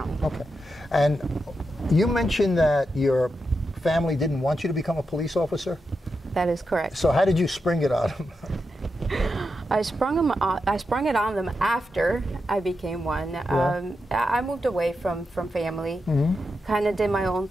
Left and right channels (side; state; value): both; normal; correlation 0.87